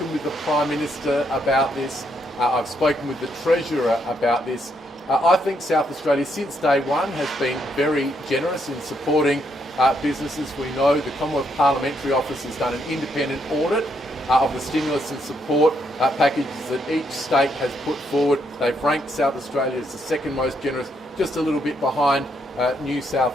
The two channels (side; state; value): both; normal; correlation 0.75